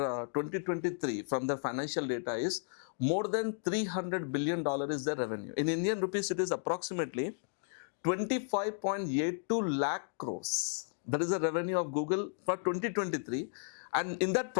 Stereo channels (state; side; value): silent; right; digital silence